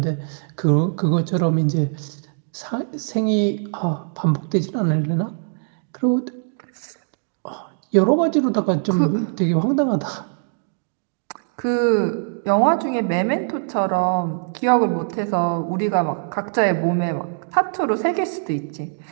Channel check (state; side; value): silent; left; digital silence